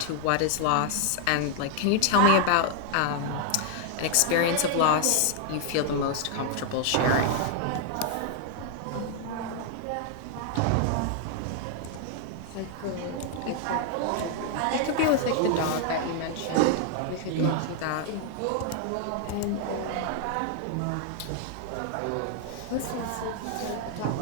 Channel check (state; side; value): different; both; correlation 0.00